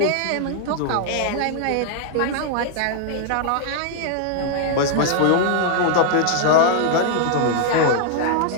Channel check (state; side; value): different; both; correlation -0.01